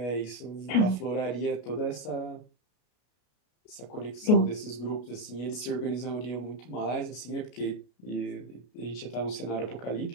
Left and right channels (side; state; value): right; late; 33 ms